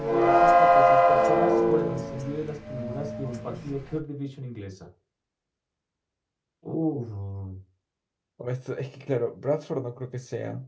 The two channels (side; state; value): both; identical; correlation 1.00